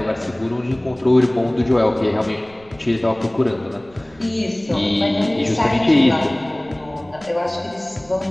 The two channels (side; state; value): right; noise; rumble, 28 dB below the sound